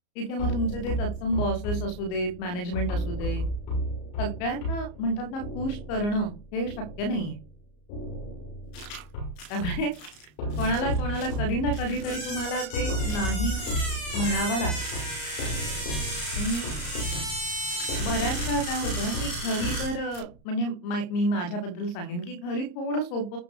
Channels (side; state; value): right; late; 34 ms